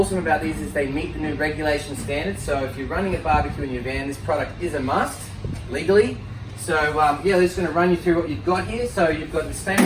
about these is they meet the new regulation standards, so if you're running a barbecue in your van, this product is a must, legally. So yeah, we're just going to run you through what you've got here. So you've got the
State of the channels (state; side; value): identical; both; correlation 1.00